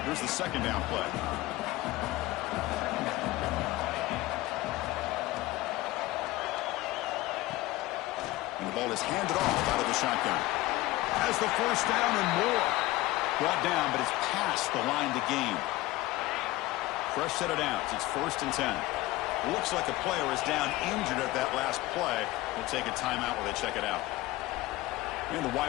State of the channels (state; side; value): quieter; right; 18.3 dB